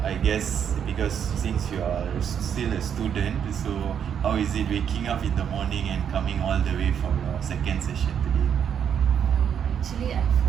I guess because since you are still a student, so how is it waking up in the morning and coming all the way for your second session today? Actually, I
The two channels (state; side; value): quieter; left; 8.3 dB